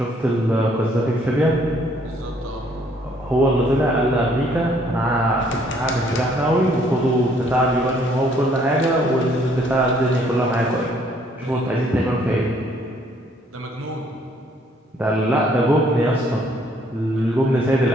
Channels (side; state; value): both; normal; correlation 0.64